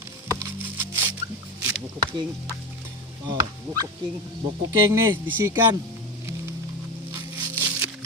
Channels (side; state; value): both; normal; correlation 0.21